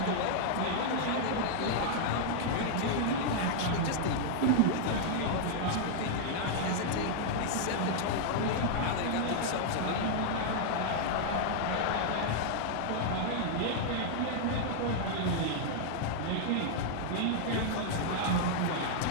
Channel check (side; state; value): both; different; correlation -0.01